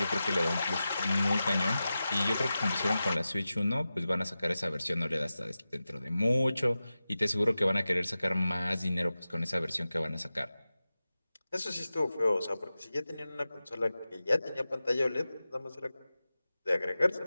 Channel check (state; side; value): inverted; both; correlation -0.94